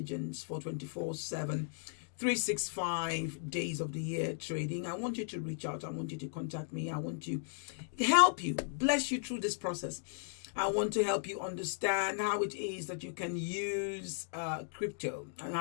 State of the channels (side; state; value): right; silent; digital silence